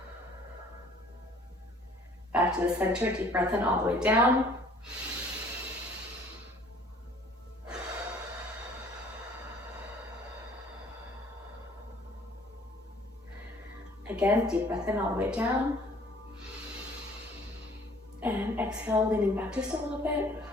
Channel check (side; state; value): both; normal; correlation 0.55